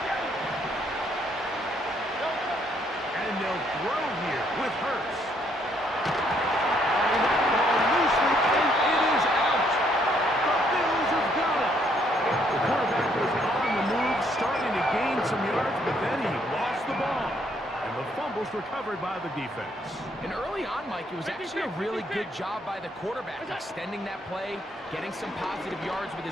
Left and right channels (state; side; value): normal; both; correlation 0.69